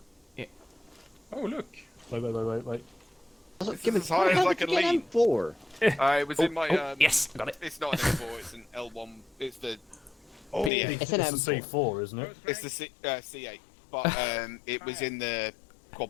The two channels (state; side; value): drops out; right; at 10.7 s